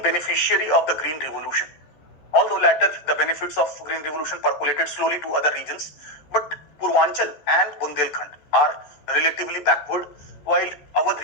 beneficiary of the Green Revolution. Although later the benefits of Green Revolution percolated slowly to other regions, but Purvanchal and Bundelkhand are relatively backward, while our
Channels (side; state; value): right; late; 14 ms